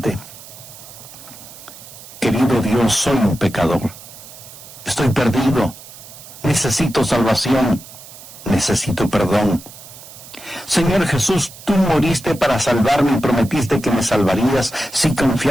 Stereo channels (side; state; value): right; noise; hiss, 17 dB below the sound